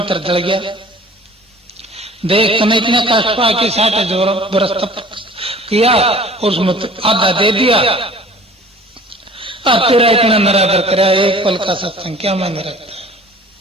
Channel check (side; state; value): both; normal; correlation 0.47